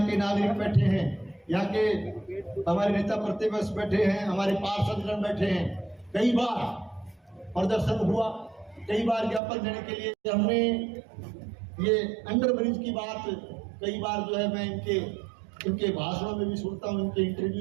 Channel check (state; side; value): drops out; left; at 9.4 s